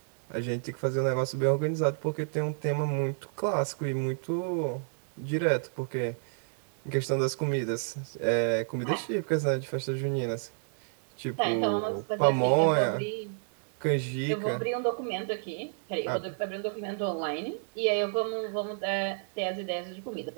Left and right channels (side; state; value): left; silent; digital silence